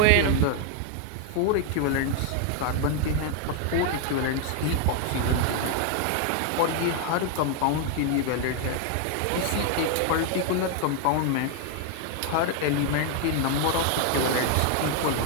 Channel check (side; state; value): both; different; correlation 0.00